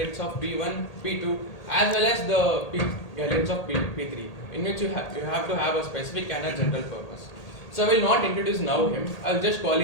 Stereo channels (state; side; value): late; right; 1.8 ms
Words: of P1, P2 as well as the guidelines of P3, in which you have to have a specific and a general purpose. So I will not introduce now him. I'll just call